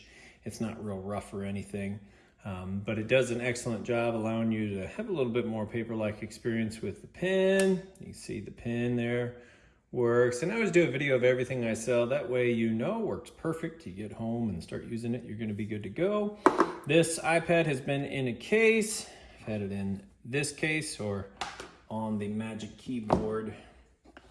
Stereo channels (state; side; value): identical; both; correlation 1.00